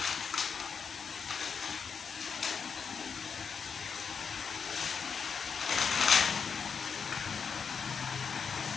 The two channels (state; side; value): quieter; right; 6.2 dB